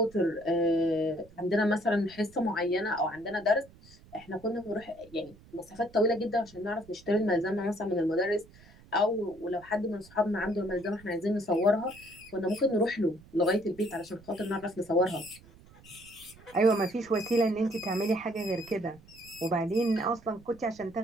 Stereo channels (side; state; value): right; noise; rumble, 24 dB below the sound